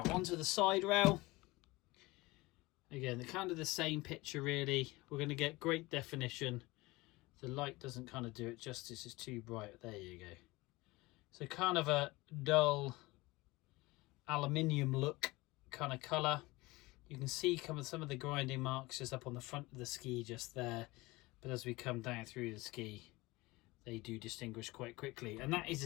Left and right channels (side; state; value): right; quieter; 21.6 dB